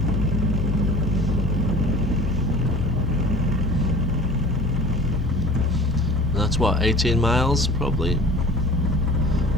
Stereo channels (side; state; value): both; normal; correlation 0.44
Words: That's what, 18 miles probably.